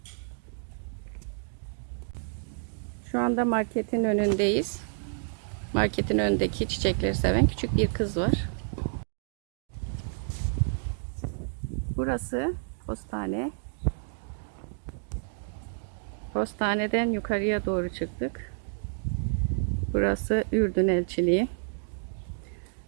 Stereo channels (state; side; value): silent; left; digital silence